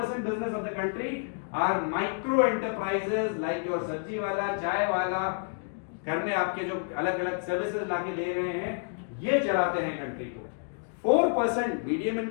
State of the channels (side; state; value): right; silent; digital silence